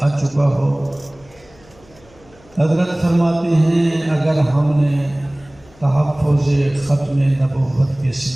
آ چکا ہو۔ حضرت فرماتے ہیں اگر ہم نے تحفظ ختم نبوت کے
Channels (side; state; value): left; noise; hum, 28 dB below the sound